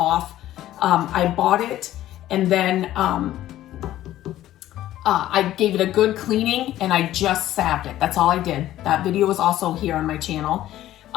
I bought it, and then I gave it a good cleaning, and I just salved it. That's all I did. That video is also here on my channel,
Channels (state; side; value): quieter; right; 13.7 dB